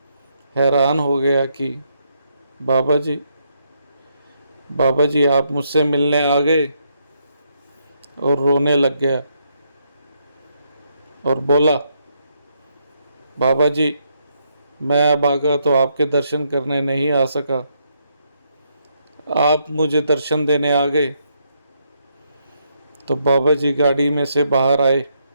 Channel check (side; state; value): both; inverted; correlation -0.76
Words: हैरान हो गया कि बाबा जी, बाबा जी आप मुझसे मिलने आ गए? और रोने लग गया और बोला, बाबा जी मैं अब आगा तो आपके दर्शन करने नहीं आ सका, आप मुझे दर्शन देने आ गए। तो बाबा जी गाड़ी में से बाहर आए,